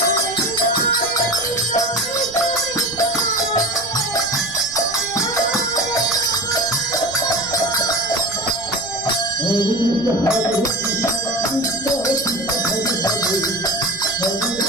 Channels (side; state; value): right; noise; rumble, 20 dB below the sound